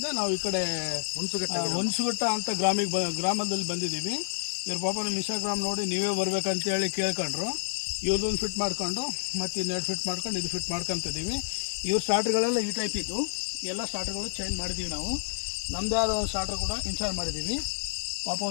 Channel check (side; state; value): right; silent; digital silence